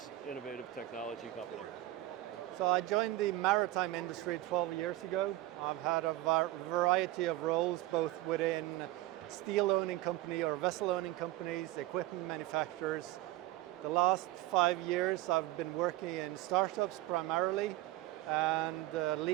innovative technology company? So I joined the maritime industry 12 years ago. I've had a variety of roles, both within steel-owning company or vessel-owning companies, equipment manufacturers. The last 5 years I've been working in startups primarily and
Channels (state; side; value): quieter; left; 16.5 dB